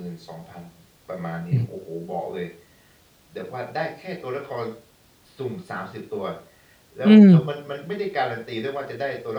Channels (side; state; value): both; identical; correlation 1.00